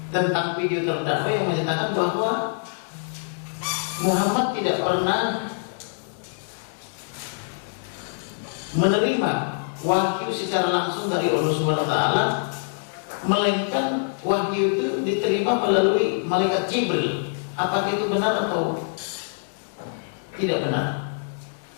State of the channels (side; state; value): right; silent; digital silence